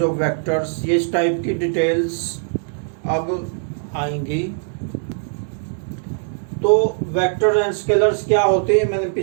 of vectors, ये इस टाइप की डिटेल्स अब आएंगी। तो वेक्टर एंड स्केलर्स क्या होते हैं मैंने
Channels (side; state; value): left; silent; digital silence